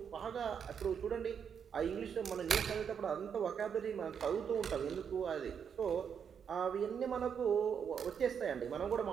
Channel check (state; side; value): quieter; left; 7.4 dB